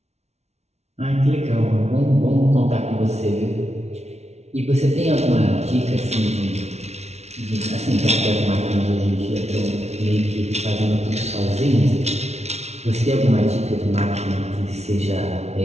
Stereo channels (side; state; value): left; late; 0.31 ms